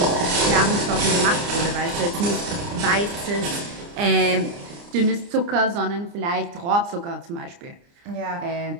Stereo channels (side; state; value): left; late; 29 ms